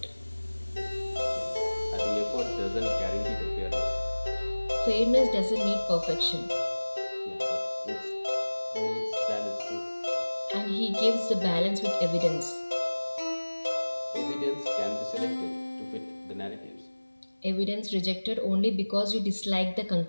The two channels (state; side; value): inverted; both; correlation -1.00